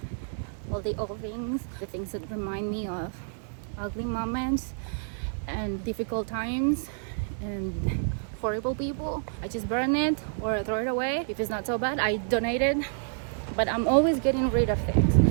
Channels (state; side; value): silent; left; digital silence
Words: all the old things, the things that remind me of ugly moments and difficult times and horrible people. I just burn it or throw it away. If it's not so bad, I donate it. But I'm always getting rid of things.